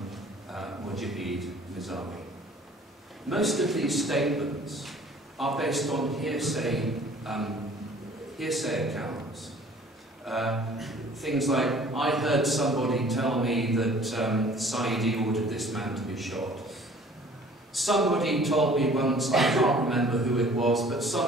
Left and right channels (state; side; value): normal; both; correlation 0.51